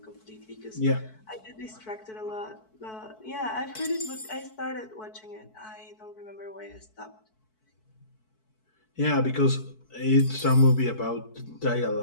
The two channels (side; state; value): right; late; 4.6 ms